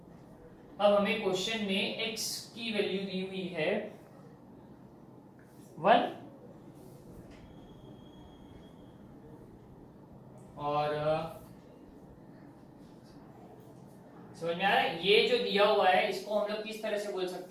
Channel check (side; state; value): both; identical; correlation 1.00